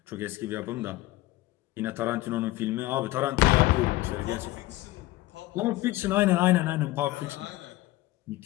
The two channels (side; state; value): right; quieter; 17.8 dB